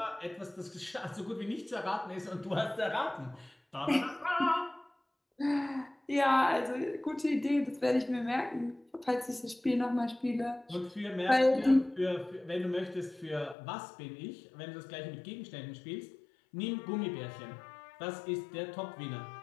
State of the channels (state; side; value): drops out; right; at 13.6 s